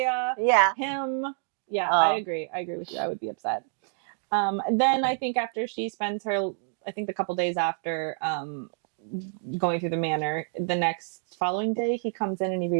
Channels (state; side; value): silent; left; 59 dB below the other